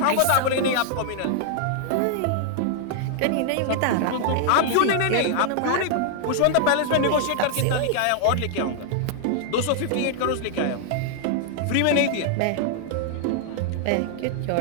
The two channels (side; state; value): both; different; correlation 0.00